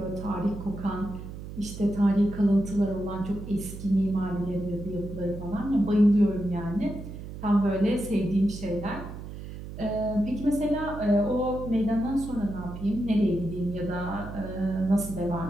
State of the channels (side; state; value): right; noise; hum, 11 dB below the sound